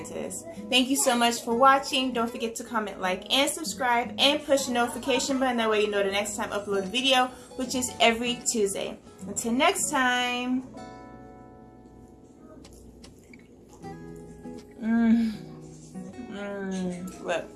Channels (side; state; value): both; identical; correlation 1.00